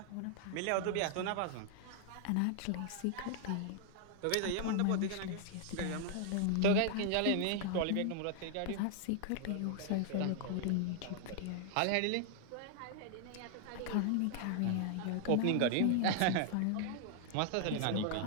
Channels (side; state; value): both; different; correlation 0.00